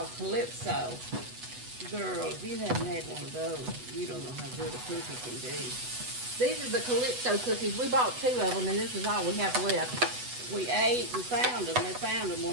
Calypso. Girl, if you haven't had one of those, you don't know how good a cookie can be. These are the Calypso cookies. We bought 2 of them, and this is all we have left. We ate and found them. They found them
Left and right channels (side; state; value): left; late; 8.1 ms